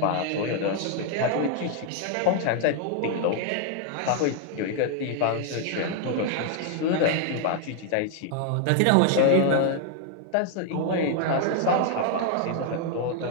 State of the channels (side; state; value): both; different; correlation 0.00